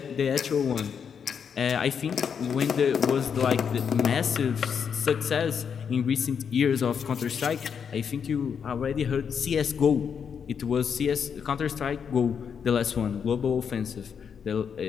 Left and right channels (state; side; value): quieter; right; 7.0 dB